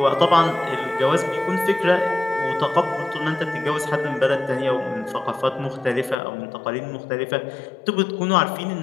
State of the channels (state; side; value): drops out; right; at 6.2 s